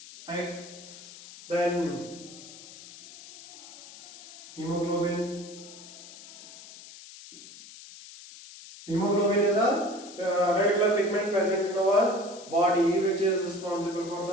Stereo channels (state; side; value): noise; left; hiss, 17 dB below the sound